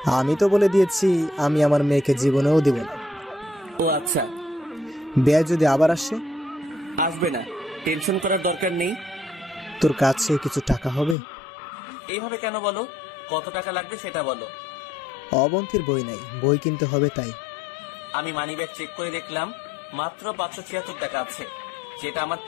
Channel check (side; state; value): right; drops out; at 11.2 s